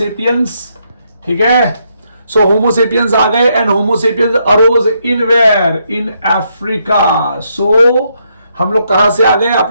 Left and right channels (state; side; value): inverted; both; correlation -0.77